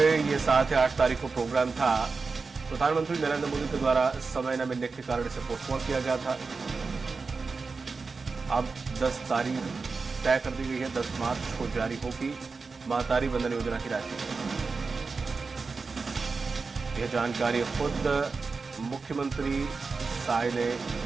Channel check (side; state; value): left; quieter; 4.4 dB